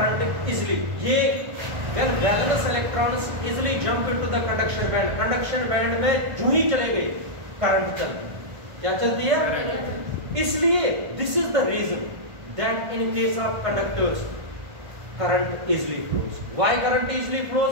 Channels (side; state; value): left; late; 1.5 ms